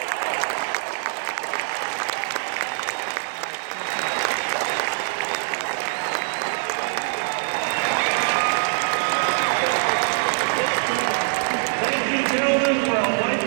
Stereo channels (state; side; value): silent; left; 62 dB below the other